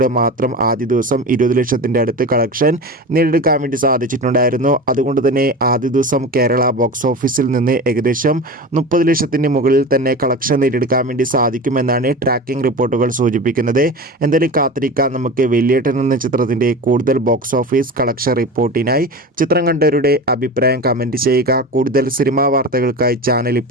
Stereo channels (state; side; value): normal; both; correlation 0.30